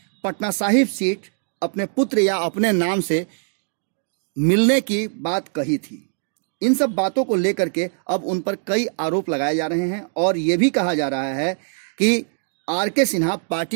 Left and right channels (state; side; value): silent; left; digital silence